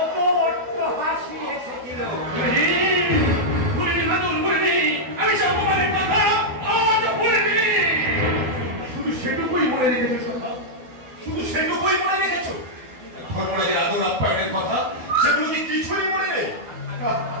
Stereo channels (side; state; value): left; late; 12 ms